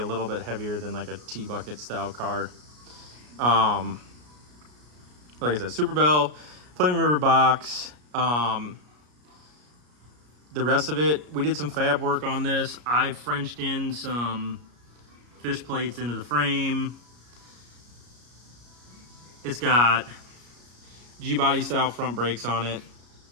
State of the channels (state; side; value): late; left; 33 ms